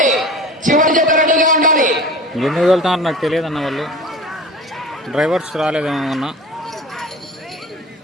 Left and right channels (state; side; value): normal; both; correlation 0.37